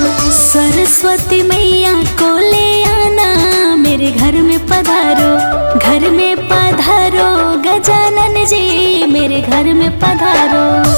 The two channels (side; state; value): both; inverted; correlation -1.00